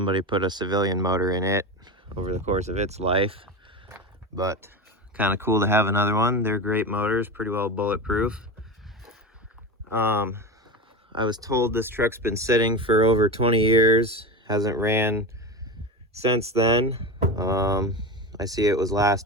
put a civilian motor in it over the course of its life. But kind of cool to have another one. They're great motors, pretty well bulletproof. I was told this truck's been sitting for over 20 years, hasn't ran since then. I see it was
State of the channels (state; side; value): normal; both; correlation 0.23